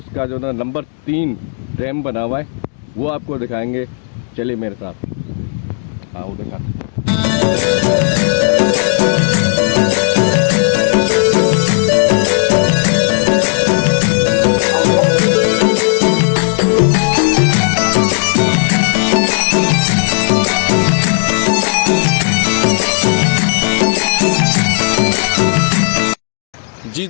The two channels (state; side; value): silent; right; digital silence